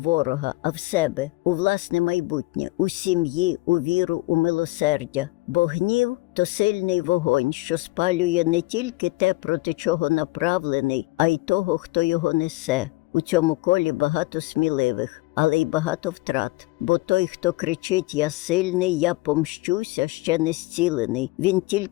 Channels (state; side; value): quieter; right; 21.6 dB